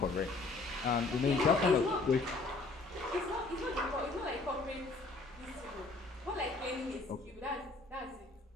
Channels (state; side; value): quieter; right; 3.5 dB